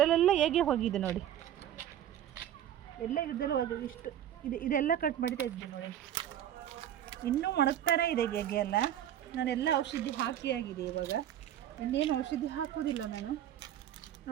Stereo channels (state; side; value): quieter; left; 11.0 dB